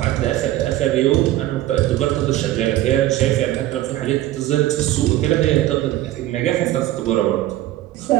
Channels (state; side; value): quieter; left; 14.7 dB